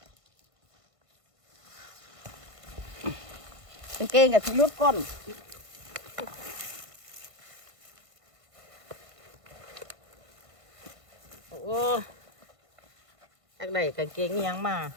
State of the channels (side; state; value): left; late; 1.5 ms